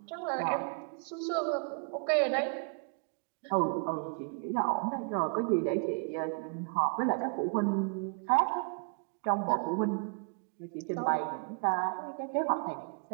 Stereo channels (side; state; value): left; quieter; 38.3 dB